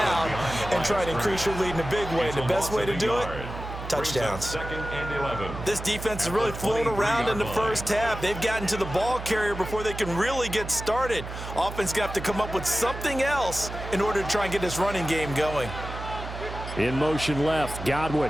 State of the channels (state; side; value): noise; right; hum, 9 dB below the sound